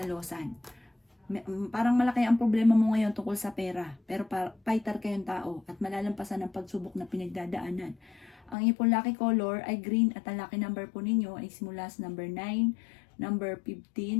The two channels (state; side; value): drops out; right; at 8.6 s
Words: Parang malaki ang problema mo ngayon tungkol sa pera. Pero fighter kayong tao at malalampasan ang pagsubok na pinagdadaanan. Ang inyong pong lucky color ay green at ang lucky number po ninyo ay simula sa number 9, number